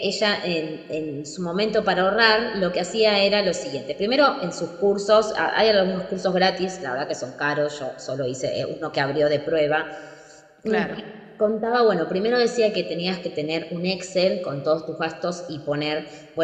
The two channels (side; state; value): both; identical; correlation 1.00